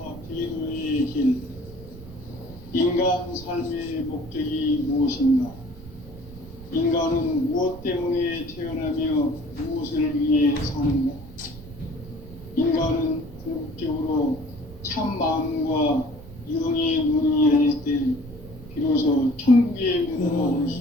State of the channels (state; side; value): noise; right; rumble, 17 dB below the sound